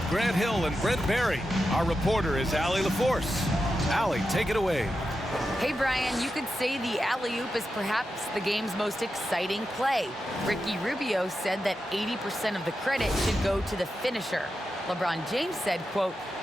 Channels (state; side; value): normal; both; correlation 0.89